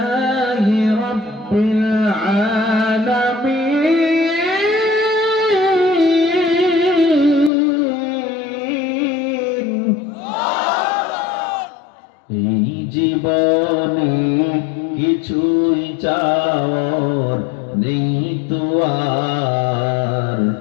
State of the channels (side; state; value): right; drops out; at 7.5 s